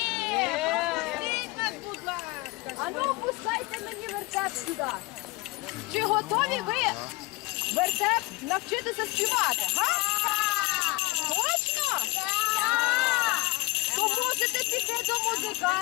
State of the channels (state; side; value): quieter; right; 23.8 dB